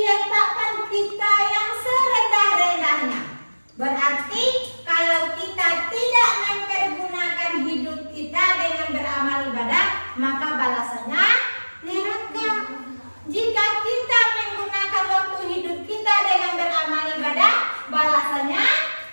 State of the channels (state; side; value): inverted; both; correlation -1.00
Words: kita yang serendah-rendahnya. Berarti kalau kita tidak mempergunakan hidup kita dengan beramal ibadah, maka balasannya neraka. Jika kita menggunakan waktu hidup kita dengan beramal ibadah, balasannya